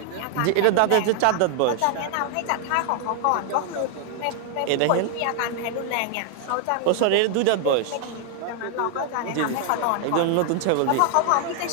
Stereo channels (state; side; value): different; both; correlation 0.00